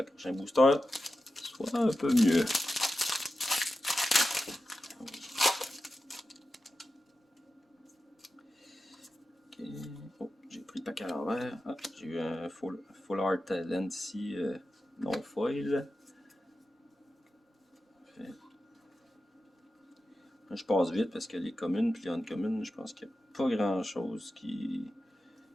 le prochain booster soit un peu mieux. Oh, j'ai pris le paquet à l'envers. Ah, j'ai eu un full art land ici, non foil. Je passe vite parce que les communes puis les uncommunes, je pense qu'il n'y a pas grand chose qui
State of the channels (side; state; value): both; normal; correlation 0.92